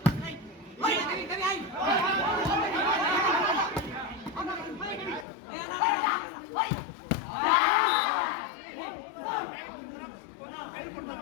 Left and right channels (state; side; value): drops out; right; at 5.2 s